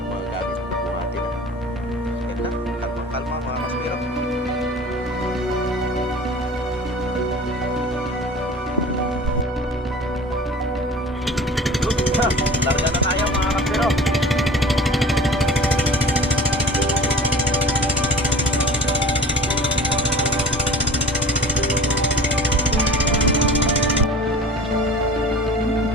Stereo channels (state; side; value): normal; both; correlation 0.41